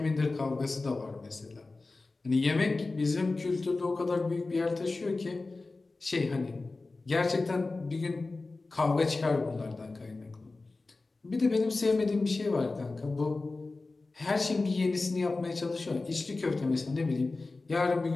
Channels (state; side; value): quieter; right; 3.5 dB